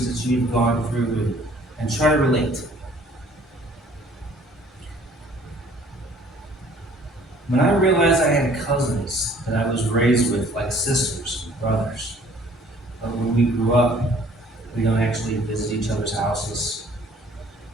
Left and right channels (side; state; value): both; normal; correlation 0.56